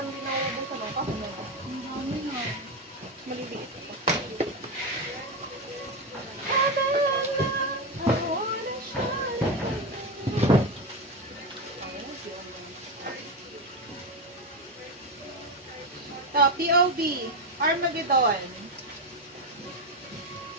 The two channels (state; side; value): normal; both; correlation 0.12